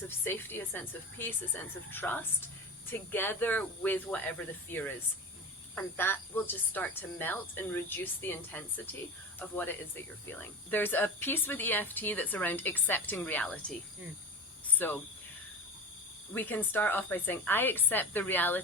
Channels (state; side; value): normal; both; correlation 0.28